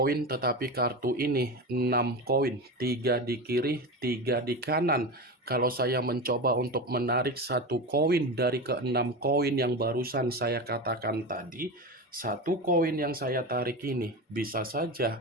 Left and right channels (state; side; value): normal; both; correlation 0.23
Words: tetapi kartu ini 6 koin, 3 di kiri, 3 di kanan. Kalau saya mencoba untuk menarik 1 koin dari ke-6 koin yang barusan saya katakan tadi, 1 koin yang saya tarik ini bisa